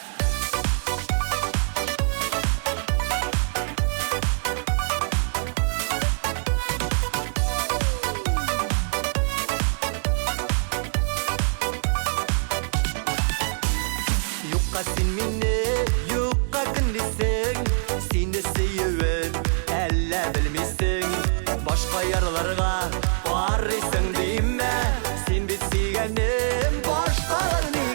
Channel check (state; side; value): silent; left; 61 dB below the other